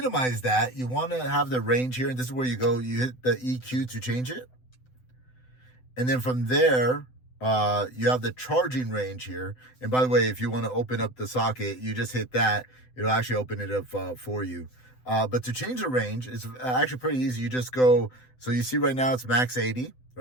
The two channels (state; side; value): late; right; 7.9 ms